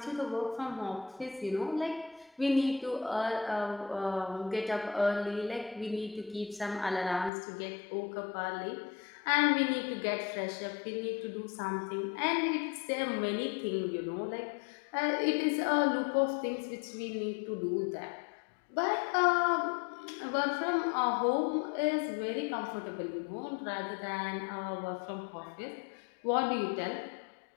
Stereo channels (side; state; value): right; drops out; at 7.3 s